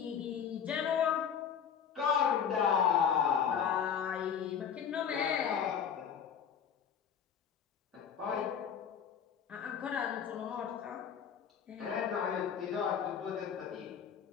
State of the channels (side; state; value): right; quieter; 7.7 dB